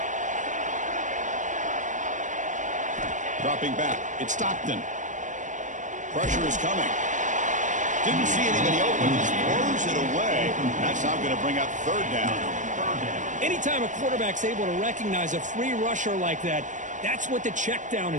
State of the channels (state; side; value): late; left; 0.36 ms